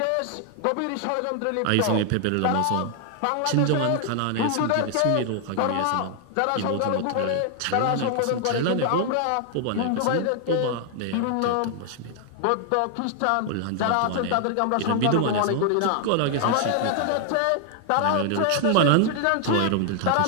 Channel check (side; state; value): both; different; correlation 0.00